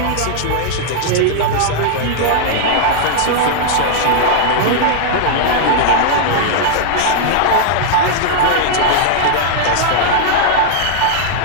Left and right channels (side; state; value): both; different; correlation -0.01